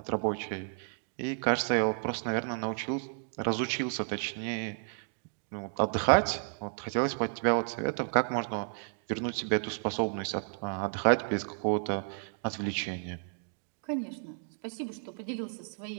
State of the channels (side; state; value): left; silent; digital silence